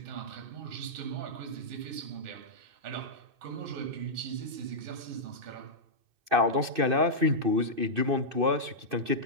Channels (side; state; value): left; late; 2.6 ms